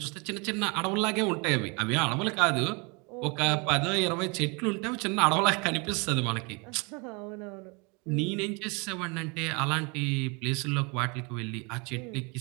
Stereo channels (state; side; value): quieter; left; 30.7 dB